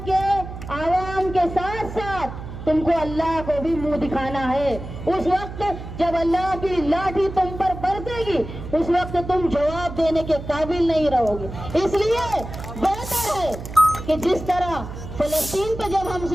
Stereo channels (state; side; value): noise; right; hum, 10 dB below the sound